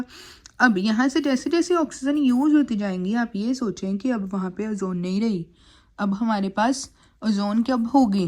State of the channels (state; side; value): identical; both; correlation 1.00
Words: अब यहाँ से जैसे जैसे ऑक्सीजन यूज़ होती जाएंगी आप ये सोचें कि अब वहाँ पे ओजोन नहीं रही, अब हमारे पास ओजोन कब